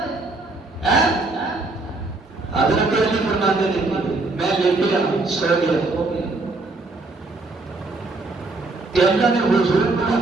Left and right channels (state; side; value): quieter; left; 3.3 dB